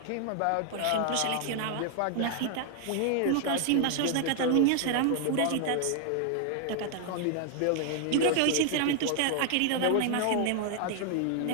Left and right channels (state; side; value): different; both; correlation 0.00